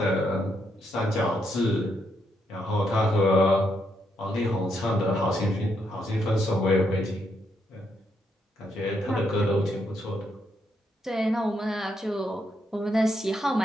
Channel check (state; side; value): normal; both; correlation 0.78